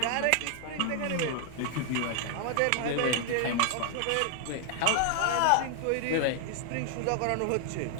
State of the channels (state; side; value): different; both; correlation 0.00